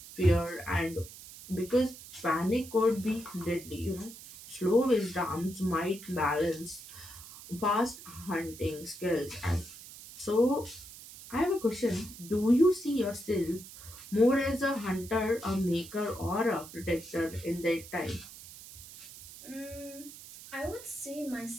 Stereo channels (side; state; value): right; noise; hiss, 16 dB below the sound